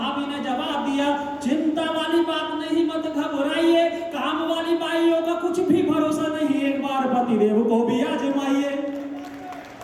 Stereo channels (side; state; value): both; identical; correlation 1.00